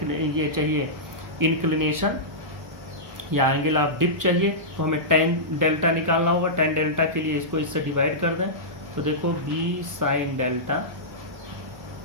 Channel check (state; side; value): late; left; 1.1 ms